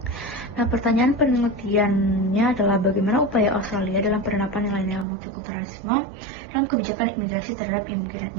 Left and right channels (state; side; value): drops out; left; at 5.1 s